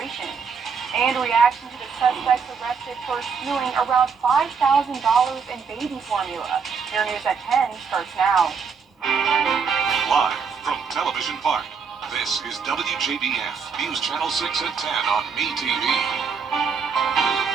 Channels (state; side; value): quieter; left; 5.9 dB